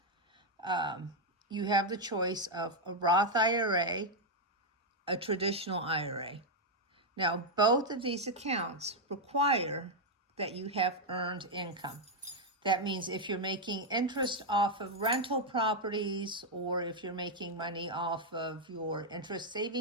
you have the choice of a Roth IRA, a traditional IRA. Now, both of these accounts require that you have earned income. That means if you're making interest off of rental properties, or if you're making money off of your interest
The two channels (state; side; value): normal; both; correlation 0.00